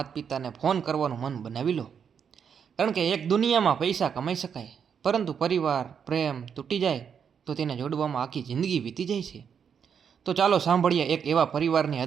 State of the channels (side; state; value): left; quieter; 7.3 dB